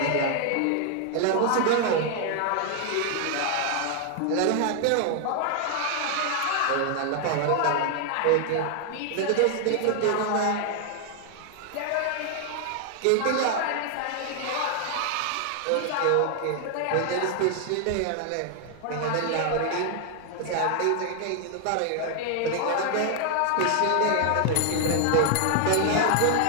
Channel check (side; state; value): both; different; correlation 0.00